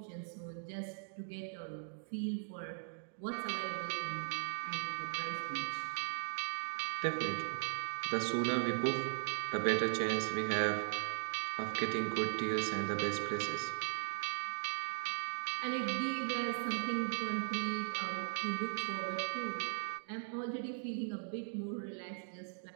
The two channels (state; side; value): silent; left; digital silence